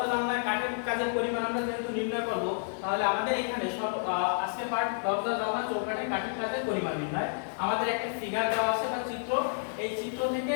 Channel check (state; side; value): silent; right; digital silence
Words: জানলা কাঠের কাজের পরিমাণ আমরা যেহেতু নির্ণয় করব, তাহলে আমাদের এখানে সব আজকে পার্ট দরজা জানলা চৌকাঠের কাঠের কাজের পরিমাণ নির্ণয়। আমাদের একটা ফিগার দেওয়া আছে বা চিত্র, এই চিত্র থেকে